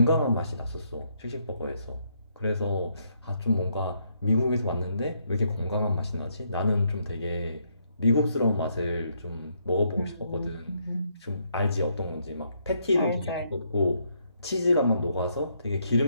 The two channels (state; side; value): inverted; both; correlation -0.74